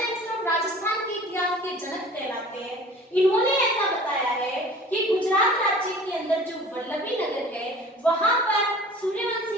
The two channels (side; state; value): both; normal; correlation 0.45